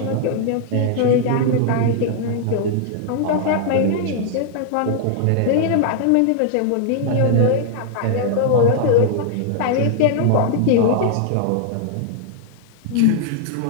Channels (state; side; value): different; both; correlation -0.01